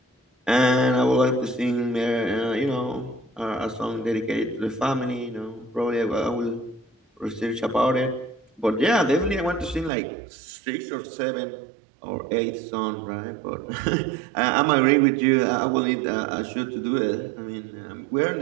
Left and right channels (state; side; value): drops out; left; at 9.9 s